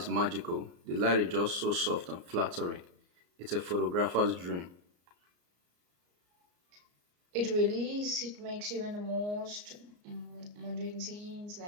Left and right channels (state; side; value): late; left; 34 ms